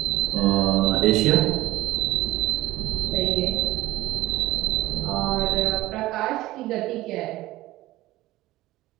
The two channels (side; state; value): left; quieter; 17.1 dB